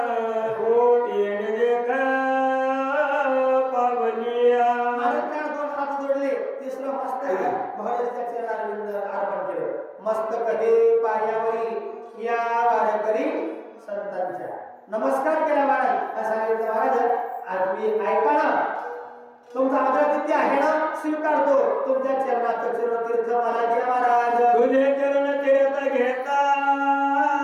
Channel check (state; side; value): identical; both; correlation 1.00